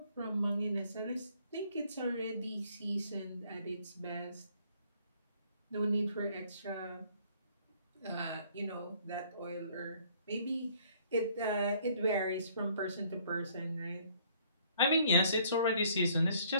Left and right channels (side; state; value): both; inverted; correlation -0.61